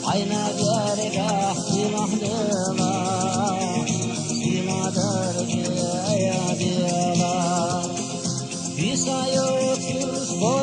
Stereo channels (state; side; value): identical; both; correlation 1.00